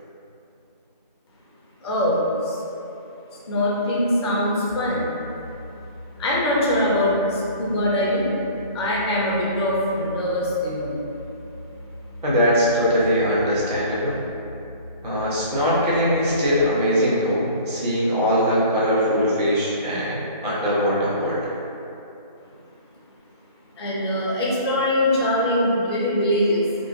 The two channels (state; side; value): inverted; both; correlation -0.43